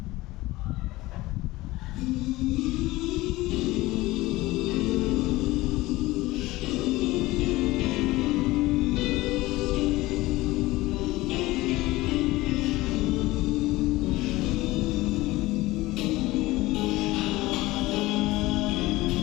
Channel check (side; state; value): right; quieter; 19.1 dB